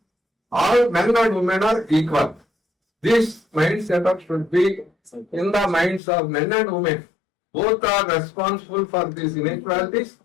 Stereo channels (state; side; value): drops out; right; at 6.0 s